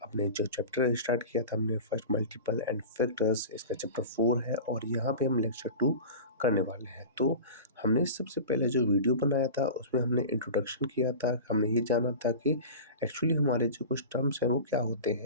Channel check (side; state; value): both; inverted; correlation -0.33